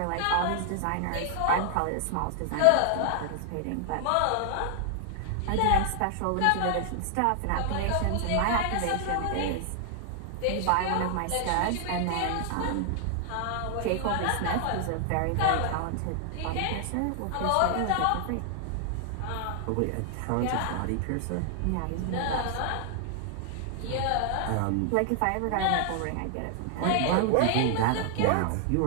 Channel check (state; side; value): different; both; correlation 0.00